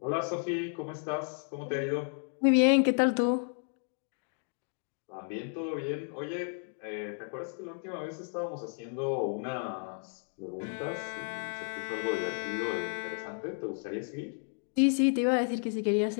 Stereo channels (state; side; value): silent; right; 56 dB below the other